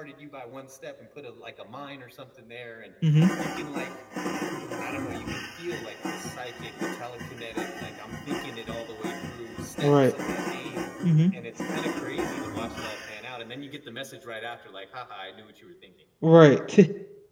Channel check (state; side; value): identical; both; correlation 1.00